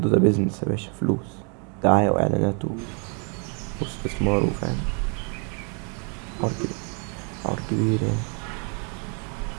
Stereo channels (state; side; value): quieter; left; 37.7 dB